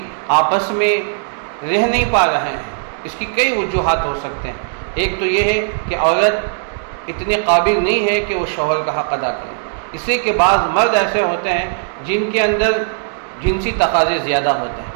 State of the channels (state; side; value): silent; left; digital silence